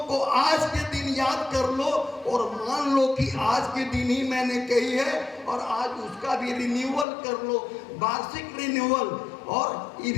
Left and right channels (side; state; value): right; drops out; at 7.1 s